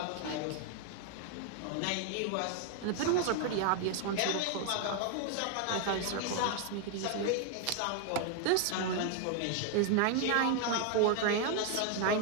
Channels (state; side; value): different; both; correlation 0.00